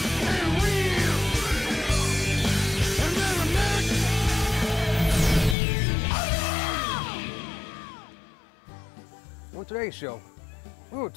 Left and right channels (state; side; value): drops out; right; at 5.6 s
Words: And real American! On today's show, we will